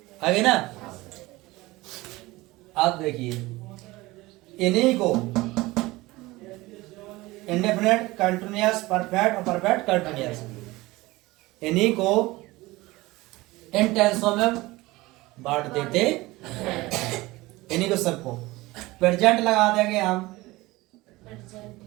आगे ना। आप देखिए, इन्हीं को इंडेफिनिट, कंटिन्यूअस, परफेक्ट और परफेक्ट कंटिन्यूअस, इन्हीं को इन टेंसों में बांट देते, इन्हीं को सबको प्रेजेंट लगा देंगे हम,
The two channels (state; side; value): quieter; left; 20.2 dB